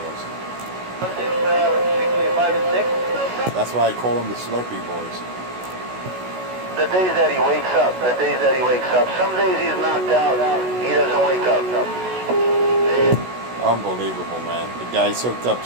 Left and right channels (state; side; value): late; left; 16 ms